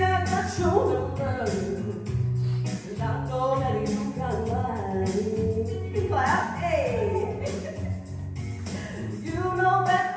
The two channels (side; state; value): both; identical; correlation 1.00